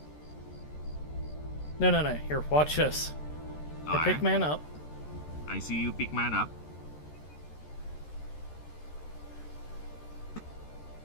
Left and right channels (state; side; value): late; right; 13 ms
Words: No. Here, watch this. I pick man up. I see you pick man up.